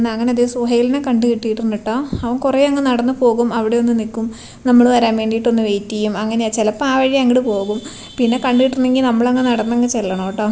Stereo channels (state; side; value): identical; both; correlation 1.00